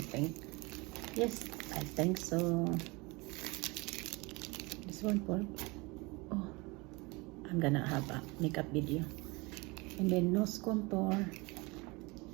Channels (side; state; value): left; quieter; 25.6 dB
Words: yes, I think so. This one for, oh, I'm gonna have a makeup video. And then nose contour.